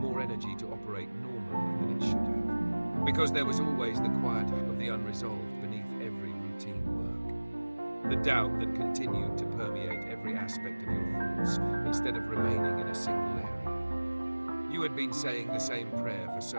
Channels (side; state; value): both; inverted; correlation -1.00